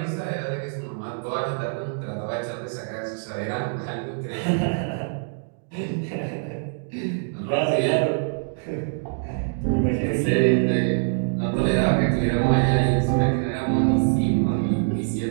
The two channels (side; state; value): left; silent; digital silence